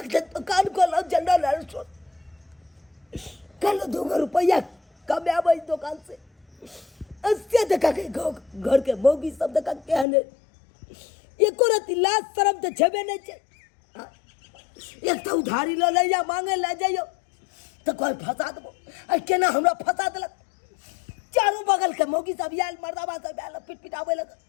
दिन दुकान खोला जनरल स्टोर कल 2 रुपया कमाबै दुकान से अस्से देखा के घर के मौगी सब देखा के हने एको रति लाज शरम तो छबे नहीं छै एक तो उधारी ल ले या मांगे ले जाइयो तो कोई फंसा देबो आ केना हमरा फंसा देलक चारों बगल के मौगी सब आयल मर्दाबा सब आयल पिटपिटावे लग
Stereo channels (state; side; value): drops out; right; at 10.1 s